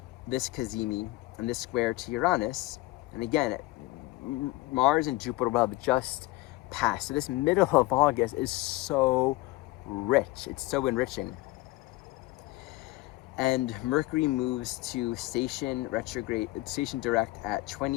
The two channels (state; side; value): quieter; right; 19.9 dB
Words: this Kazemi and this square to Uranus, and again, Mars and Jupiter will have just passed. So this middle of August is so rich. It's so enriching. And Mercury moves to station retrograde, station direct at